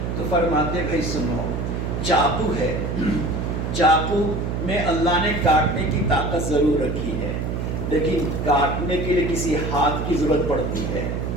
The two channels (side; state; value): right; noise; hum, 2 dB below the sound